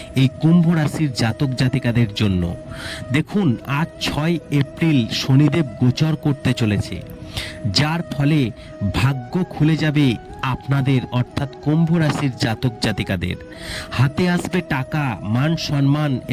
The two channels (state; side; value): identical; both; correlation 1.00